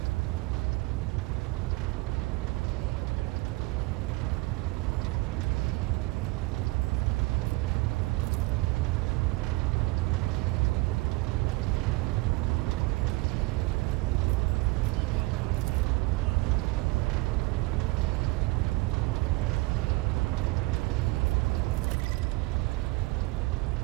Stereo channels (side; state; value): left; quieter; 22.9 dB